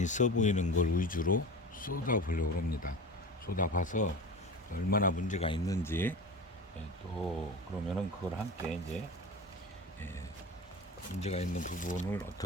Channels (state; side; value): normal; both; correlation 0.31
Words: 보이는 걸 위주로 쏟아 보려고 합니다. 쏟아 봐서 얼마나 문제가 있는지, 또 그러면은 그걸 함께 이제 문제가 있는 부분을